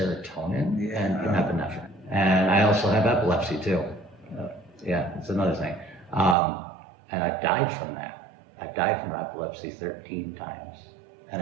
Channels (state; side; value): drops out; left; at 6.4 s